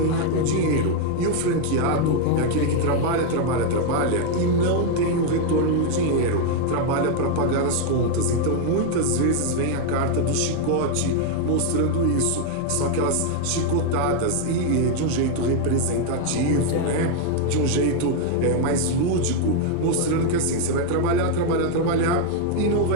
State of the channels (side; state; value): both; different; correlation 0.01